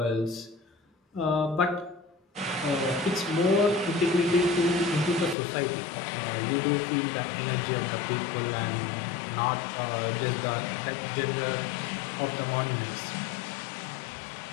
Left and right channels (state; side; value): drops out; right; at 5.4 s